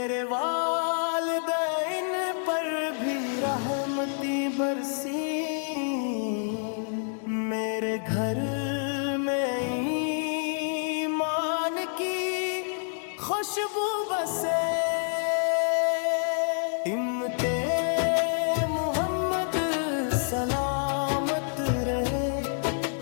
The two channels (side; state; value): right; silent; digital silence